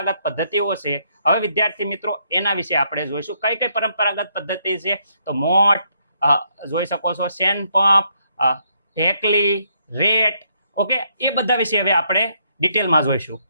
પદ્ધતિઓ છે, હવે વિદ્યાર્થી મિત્રો એના વિશે આપણે જોઈશું. કઈ કઈ પરંપરાગત પદ્ધતિ છે? તો મોટ જોઈ શકો છો, સેન પંપ, ઢેકલી, રેટ. ઓકે, એ બધા વિશે હવે આપણે ડિટેલમાં જોઈશું.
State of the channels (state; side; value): inverted; both; correlation -0.73